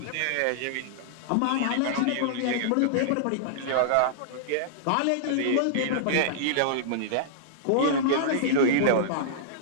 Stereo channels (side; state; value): both; different; correlation -0.02